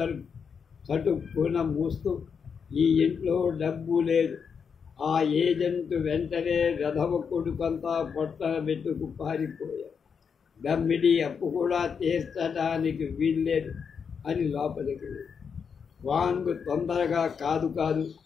చటుక్కున మూస్తూ, ఈ ఇంట్లో డబ్బు లేదు. ఆ ఏజెంట్ వెంటనే వెధవ కొడుకంతా పొట్టన పెట్టుకు పారిపోయాడు. దమ్మిడి అప్పు కూడా తీర్చడానికి వీల్లేదు అని లోపలికి వెళ్ళి, వాంగు తొందరగా కాదు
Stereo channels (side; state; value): right; quieter; 6.4 dB